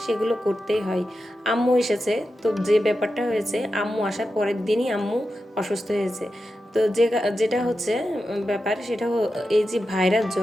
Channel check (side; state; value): both; normal; correlation 0.90